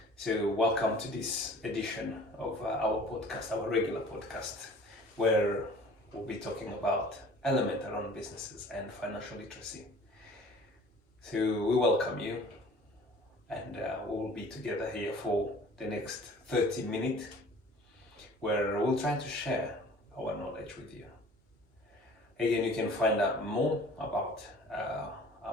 So welcome to this edition of our podcast, our regular podcast, where we'll be talking about element around businesses and financial literacy. So we welcome you, and we'll be together here for the next 30 minutes, where we'll try to share our knowledge with you. Again, you can find out more about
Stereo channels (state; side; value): normal; both; correlation 0.48